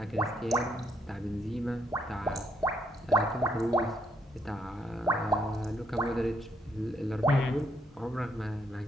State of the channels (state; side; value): normal; both; correlation 0.73